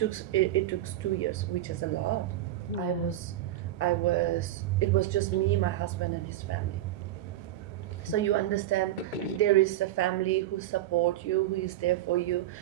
2 years, which is a lot. Yeah. It was just me, my husband, and his family. So you understand there is a family who support you, who is there for you,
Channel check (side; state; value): left; quieter; 13.4 dB